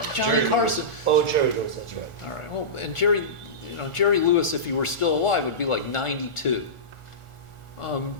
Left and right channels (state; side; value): late; right; 1.4 ms